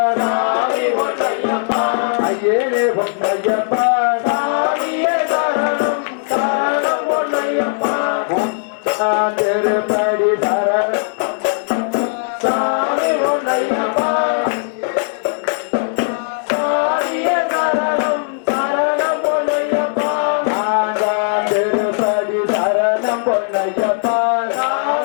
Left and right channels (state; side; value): silent; right; digital silence